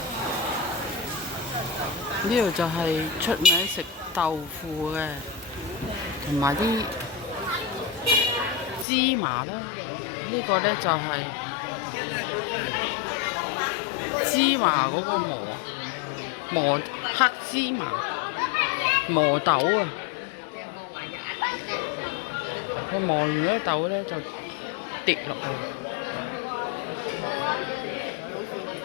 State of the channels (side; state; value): right; drops out; at 8.8 s